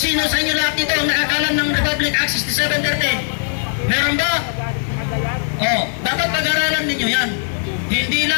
sa inyo lahat dito ang nakakalam ng Republic Act 6713? Meron ba? Oh, dapat pag-aralan ninyo yan. Hindi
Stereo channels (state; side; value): silent; right; 67 dB below the other